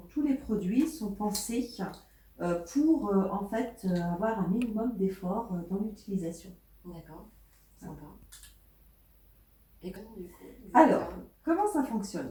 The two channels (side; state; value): both; identical; correlation 1.00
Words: tous les produits sont pensés pour en fait avoir un minimum d'effort dans l'utilisation. D'accord. Sympa. Et comment du coup? Alors, comment ça